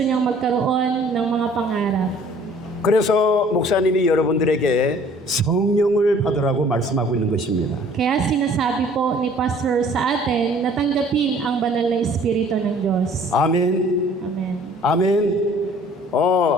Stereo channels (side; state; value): both; normal; correlation 0.54